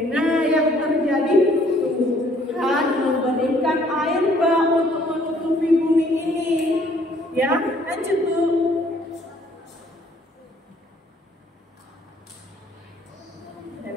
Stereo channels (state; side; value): normal; both; correlation 0.62